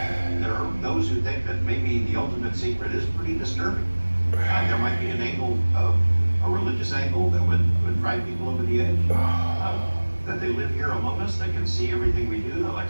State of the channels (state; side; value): inverted; both; correlation -1.00